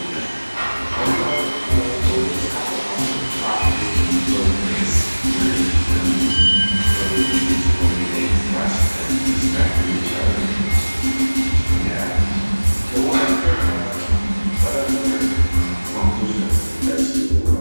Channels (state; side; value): inverted; both; correlation -1.00